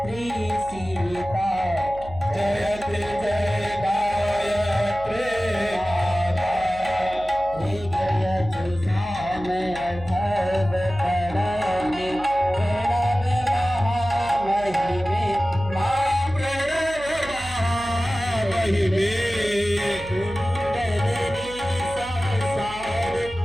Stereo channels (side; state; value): right; noise; hum, 16 dB below the sound